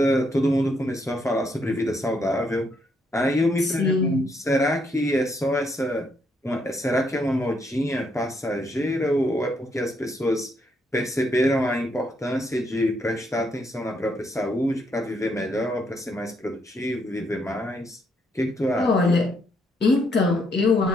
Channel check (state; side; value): normal; both; correlation 0.74